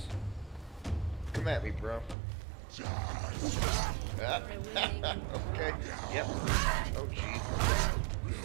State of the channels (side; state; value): left; drops out; at 2.1 s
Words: Come at me, bro. Ah, okay, yep. Oh, jeez.